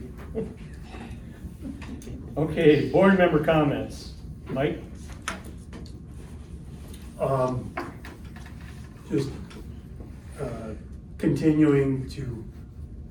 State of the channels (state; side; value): identical; both; correlation 1.00